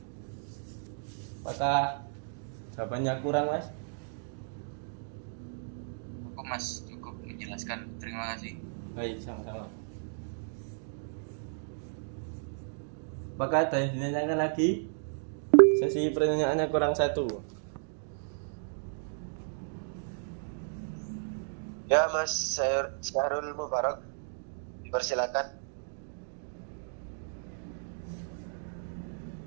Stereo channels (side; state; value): left; silent; digital silence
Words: Apakah jawabannya kurang, Mas? Cukup Mas, cukup menjelaskan. Terima kasih. Baik, sama-sama. Apakah ada yang ditanyakan lagi? Sesi pertanyaannya kurang satu. Ya Mas Syahrul Mubarak. Persilakan.